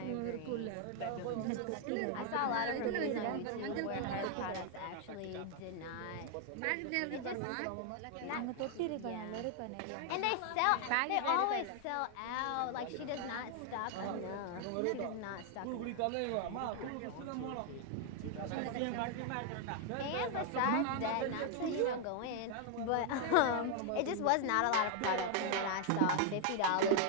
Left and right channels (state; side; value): different; both; correlation 0.00